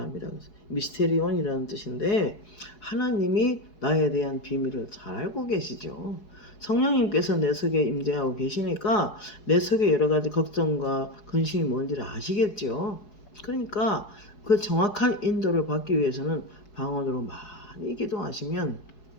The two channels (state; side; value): late; right; 4.7 ms